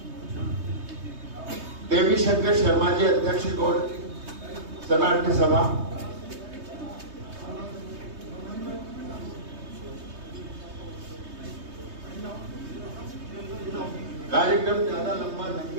देवी शंकर शर्मा जी अध्यक्ष गौड़ शरणार्थी सभा, कार्यक्रम ज्यादा लंबा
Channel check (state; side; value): late; left; 3.2 ms